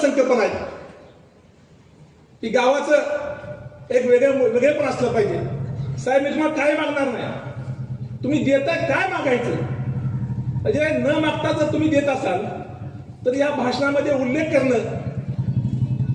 आहेत की गावाचं एक वेगळेपण असलं पाहिजे. साहेब, मी तुम्हाला काय मागणार नाही, तुम्ही देताय काय मागायचं, म्हणजे न मागता जर तुम्ही देत असाल तर या भाषणामध्ये उल्लेख करणं,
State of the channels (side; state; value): both; identical; correlation 1.00